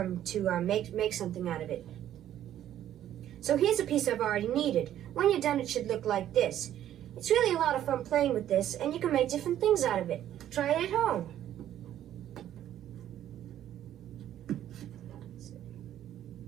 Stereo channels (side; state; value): left; quieter; 11.6 dB